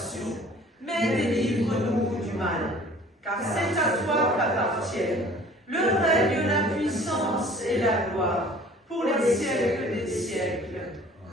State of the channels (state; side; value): normal; both; correlation 0.50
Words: mais délivre-nous du mal. Car c'est à toi qu'appartiennent le règne, la puissance et la gloire, pour les siècles des siècles.